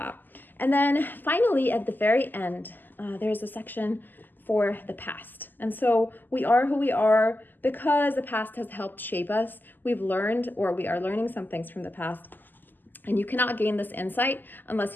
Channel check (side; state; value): right; late; 0.089 ms